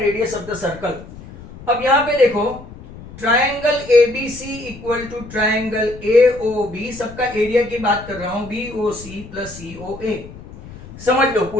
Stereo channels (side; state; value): left; noise; rumble, 16 dB below the sound